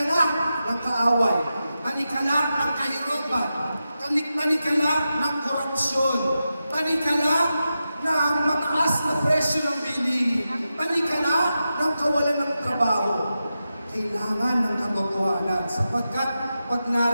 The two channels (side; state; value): both; inverted; correlation -0.91